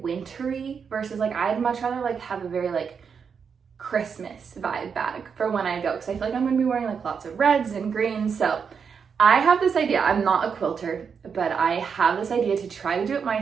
versus like I'd much rather like have a very like Christmas vibe bag for when I go, because I feel like I'm gonna be wearing like lots of reds and greens. So I have this idea. I'm not a quilter, but I have this idea to try to do it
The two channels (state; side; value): quieter; left; 6.4 dB